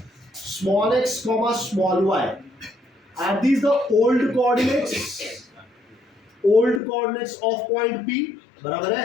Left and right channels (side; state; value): right; drops out; at 6.8 s